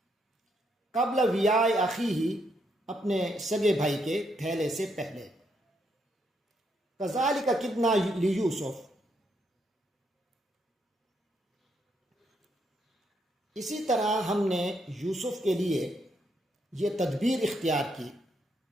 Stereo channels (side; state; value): both; normal; correlation 0.76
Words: قبل ویاء اخیہ، اپنے سگے بھائی کے تھیلے سے پہلے. کذالک کدنا لیوسف، اسی طرح ہم نے یوسف کے لیے یہ تدبیر اختیار کی.